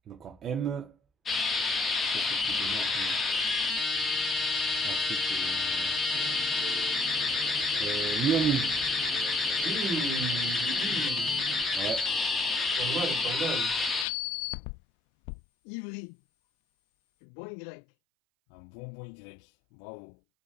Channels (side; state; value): right; drops out; at 14.1 s